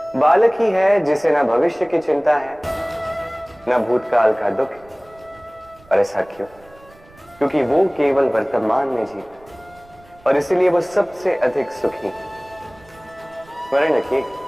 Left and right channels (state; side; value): noise; right; rumble, 27 dB below the sound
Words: बालक ही है जिसे न भविष्य की चिंता है न भूतकाल का दुख। और ऐसा क्यों? क्योंकि वो केवल वर्तमान में जीता और इसीलिए वो सबसे अधिक सुखी। स्मरण रखिए,